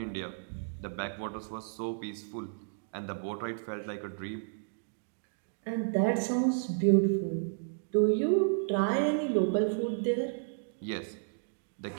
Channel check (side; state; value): left; silent; digital silence